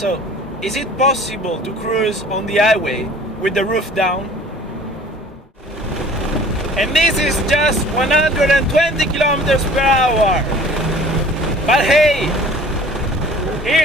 is it possible to cruise on the highway with the roof down? And this is just 120 kilometers per hour. But hey,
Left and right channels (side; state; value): both; normal; correlation 0.48